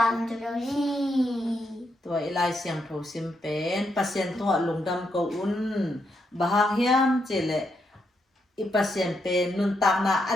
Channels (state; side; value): normal; both; correlation 0.80